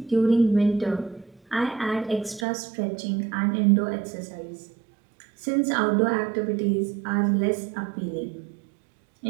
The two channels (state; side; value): drops out; left; at 2.5 s